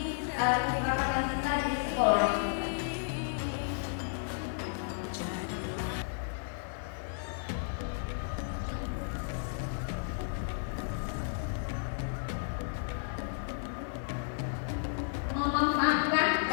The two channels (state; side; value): silent; right; digital silence